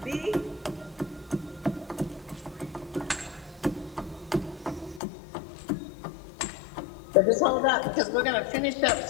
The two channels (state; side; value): drops out; right; at 5.0 s